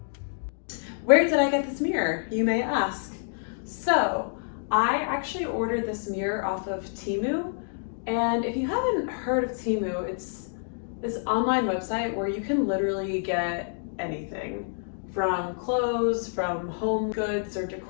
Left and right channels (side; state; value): right; silent; digital silence